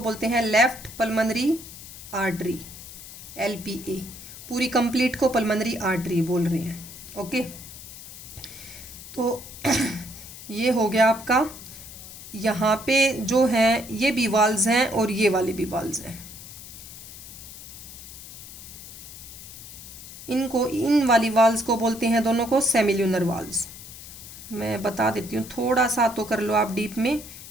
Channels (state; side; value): noise; left; hiss, 14 dB below the sound